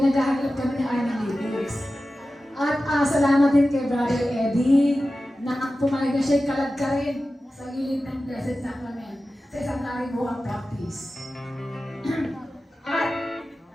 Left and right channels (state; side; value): normal; both; correlation 0.94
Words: kami ng aming lyrics. At salamat din kay Brother Eddie na pumayag na siya'y kalagkarin sa gilid ng Blessed Sacrament sa isang karibuang practice. At